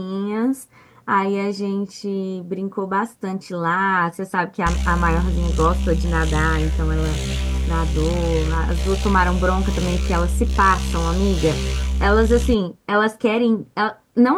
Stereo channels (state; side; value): identical; both; correlation 1.00